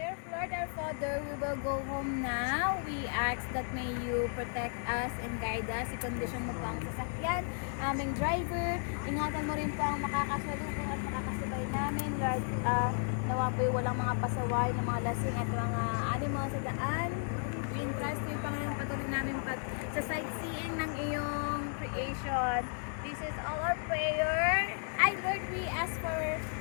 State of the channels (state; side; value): silent; right; 55 dB below the other